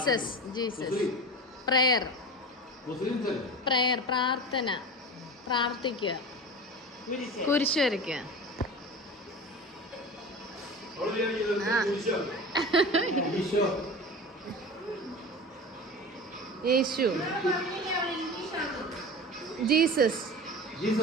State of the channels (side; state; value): both; normal; correlation 0.32